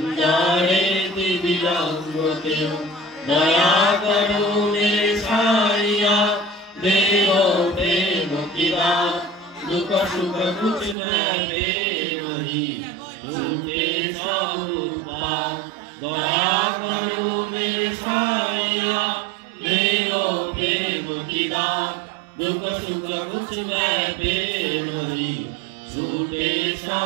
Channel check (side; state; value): left; drops out; at 11.0 s